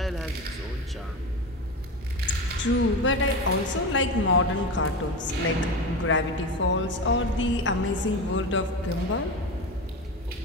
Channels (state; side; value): normal; both; correlation 0.23